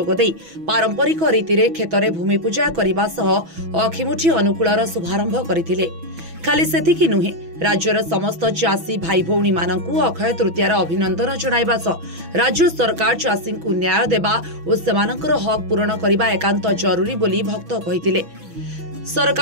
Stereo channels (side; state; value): left; late; 6.1 ms